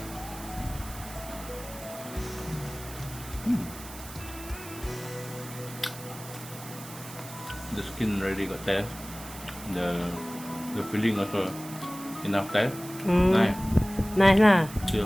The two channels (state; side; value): noise; right; hiss, 14 dB below the sound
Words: The skin already got taste. The filling also enough taste. Nice. Nice lah. Still